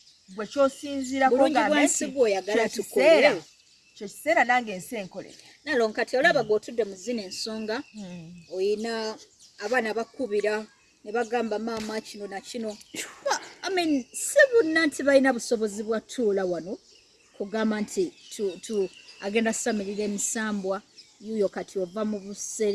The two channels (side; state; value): both; identical; correlation 1.00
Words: gwe kyosinziirako kyo kiseera nange ensi enkolere Naalongo kati olaba gw'otudde mu zino ensonga oyina abaana bakubira ne bagamba maama kino na kino si bonna nti balina busobozi bwa tuula wano kugamba nti agenda samirira emisambwa yuuyo kati ova mu